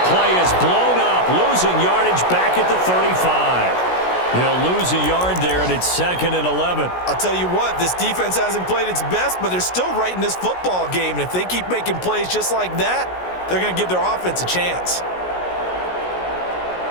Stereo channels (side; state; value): right; late; 16 ms